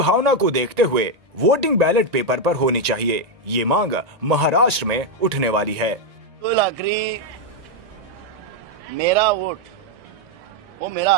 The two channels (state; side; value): late; left; 1.9 ms